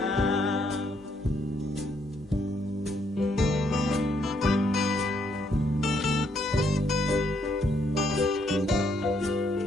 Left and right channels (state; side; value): normal; both; correlation 0.72